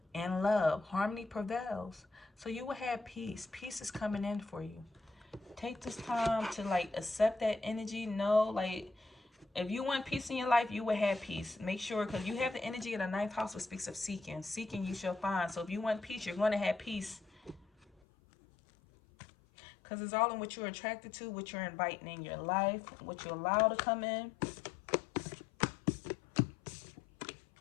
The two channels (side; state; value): right; drops out; at 17.9 s